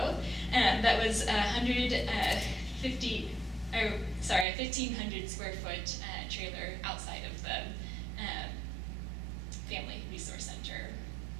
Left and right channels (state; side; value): drops out; left; at 4.5 s